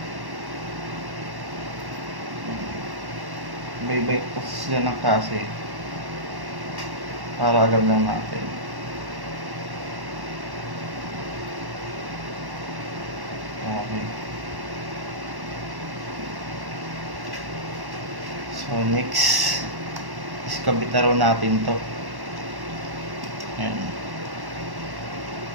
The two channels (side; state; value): left; late; 1.1 ms